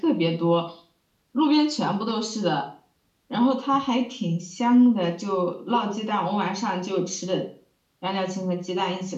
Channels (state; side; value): identical; both; correlation 1.00